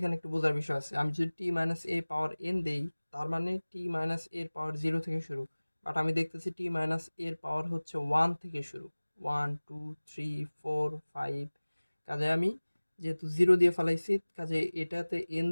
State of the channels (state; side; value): inverted; both; correlation -1.00